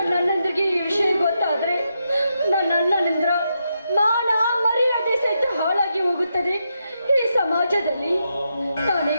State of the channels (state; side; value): inverted; both; correlation -0.83